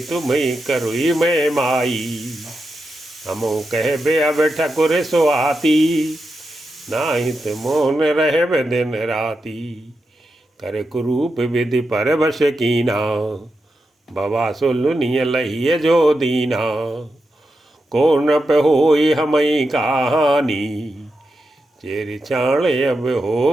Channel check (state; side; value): normal; both; correlation 0.88